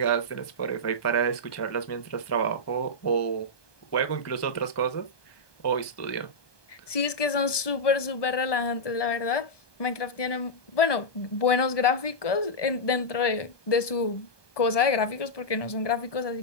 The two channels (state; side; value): late; right; 1.2 ms